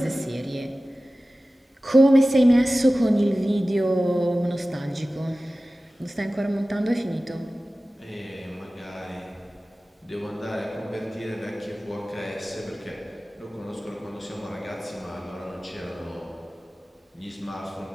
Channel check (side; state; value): both; normal; correlation 0.96